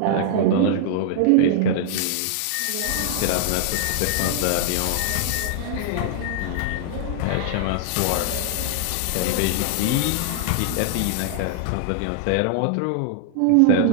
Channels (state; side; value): different; both; correlation -0.01